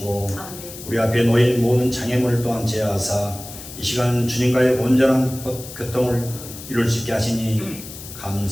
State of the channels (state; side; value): noise; left; hiss, 13 dB below the sound